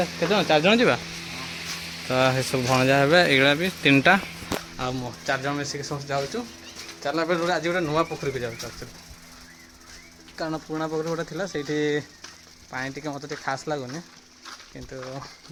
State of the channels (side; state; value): both; identical; correlation 1.00